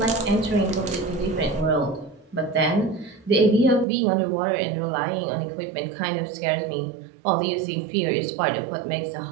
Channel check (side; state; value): left; drops out; at 3.9 s